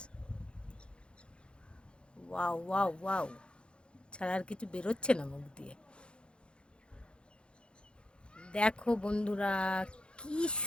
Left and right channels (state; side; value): late; right; 0.055 ms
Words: ওয়াও ওয়াও ওয়াও, ছাড়া আর কিছু বেরোচ্ছে না মুখ দিয়ে। দেখো বন্ধুরা, কি